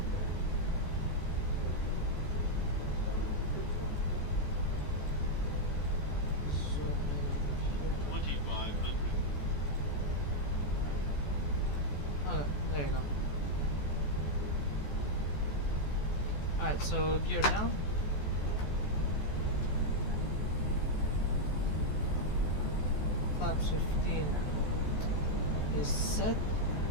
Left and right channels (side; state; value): right; late; 14 ms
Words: Zoom in. 2500. Okay, there you go. Alright, so gear down. Flaps 15 is set